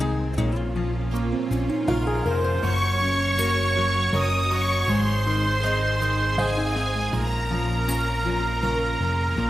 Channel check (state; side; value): normal; both; correlation 0.93